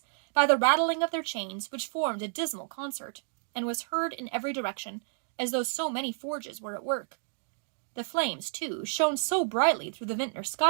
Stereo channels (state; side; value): silent; left; digital silence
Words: by the rattling of their chains, which formed a dismal concert, and was heard in every direction, as though so many forges were at work. The flames, too, shone so brightly through the vintner's